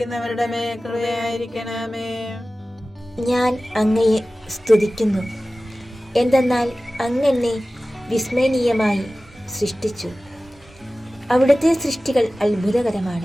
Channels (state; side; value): normal; both; correlation 0.96